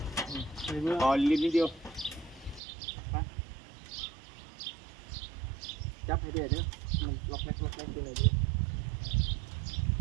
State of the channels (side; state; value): left; drops out; at 2.6 s